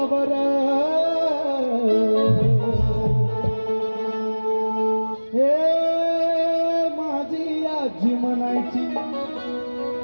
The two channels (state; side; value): inverted; both; correlation -1.00